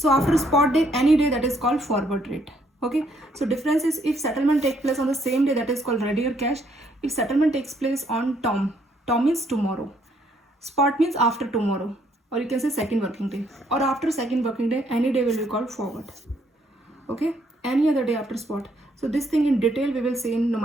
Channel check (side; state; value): both; normal; correlation 0.69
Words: after spot day, any day, that is called forward rate. Okay. So difference is if settlement takes place on the same day, that is called ready or cash. If settlement takes place on term means tomorrow. Spot means after tomorrow, or you can say second working day, or after second working day, any day will be called forward. Okay. Any other day after spot. So this thing in detail we will see in